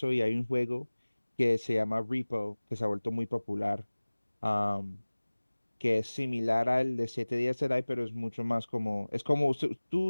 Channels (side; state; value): both; inverted; correlation -1.00